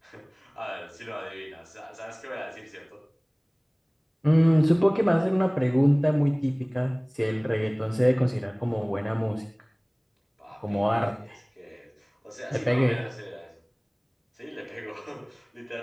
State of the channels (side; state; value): both; identical; correlation 1.00